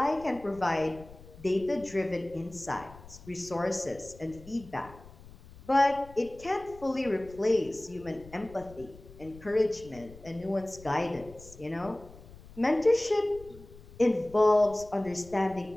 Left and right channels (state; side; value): noise; left; rumble, 20 dB below the sound